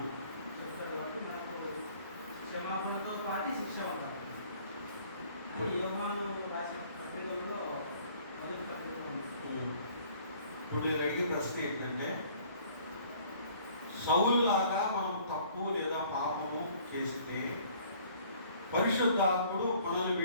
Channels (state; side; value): inverted; both; correlation -0.56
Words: చెప్తాడు కాబట్టి మనకు క్షమాపణతో పాటు శిక్ష ఉంటారు. అది యోహాను రాసిన పత్రికల్లో మొదటి పత్రిక ఉంది. ఇప్పుడు నేను అడిగే ప్రశ్న ఏంటంటే, సౌలులాగా మనం తప్పు లేదా పాపము చేస్తే పరిశుద్ధాత్ముడు మనల్ని